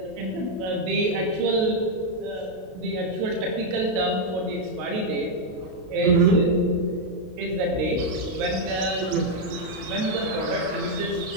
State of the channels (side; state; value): left; late; 32 ms